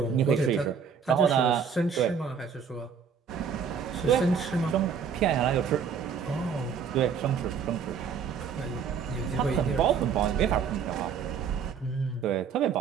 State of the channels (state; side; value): quieter; left; 6.7 dB